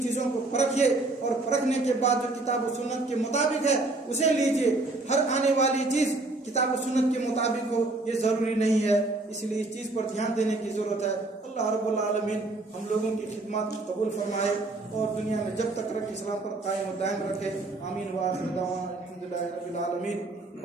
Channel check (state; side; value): quieter; left; 3.0 dB